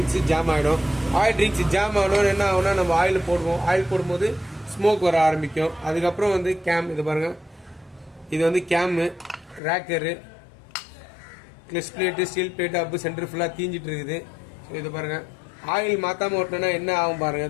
ஜாம் ஆகிடும். ஆயில் ரிங்ஸ் ஜாம் ஆகணும்னு என்ன ஆகுனா, நம்ம ஆயில் போடுவோம். ஆயில் போடும்போது ஸ்மோக் வர ஆரம்பிக்கும். அதுக்கப்புறம் வந்து கேம், இது பாருங்கள், இது வந்து cam, rocker, clutch plate, steel plate, அப்பு சென்டர் ஃபுல்லாக தீஞ்சிட்டு இருக்குது. ஸோ இது பாருங்கள், ஆயில் மாற்றாமல் ஓட்டினோன்னா என்ன ஆகும் பாருங்கள்.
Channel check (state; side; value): drops out; right; at 9.6 s